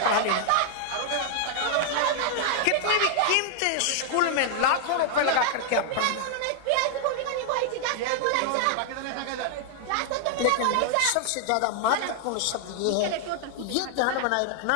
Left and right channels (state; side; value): different; both; correlation 0.00